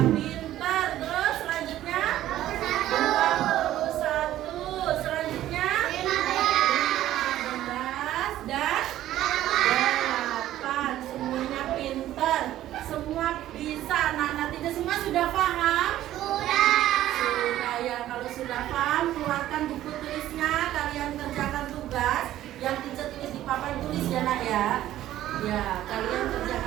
Pintar. Terus selanjutnya 22. sudah paham? Sudah. Sudah ya, kalau sudah paham, keluarkan buku tulisnya, kalian kerjakan tugas yang teacher tulis di papan tulis ya nak ya. Ya, kalian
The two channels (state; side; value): quieter; left; 13.4 dB